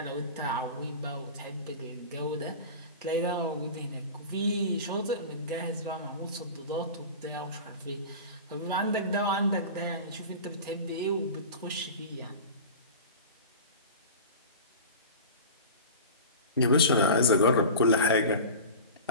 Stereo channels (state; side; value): inverted; both; correlation -0.33